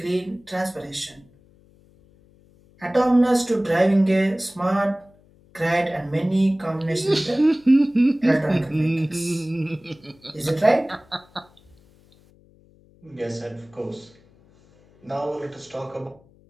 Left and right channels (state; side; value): noise; left; hum, 29 dB below the sound